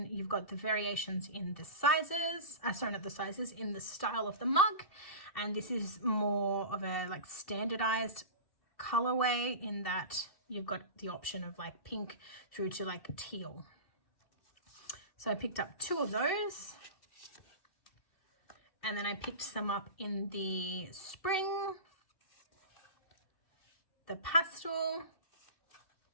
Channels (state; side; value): late; right; 2.7 ms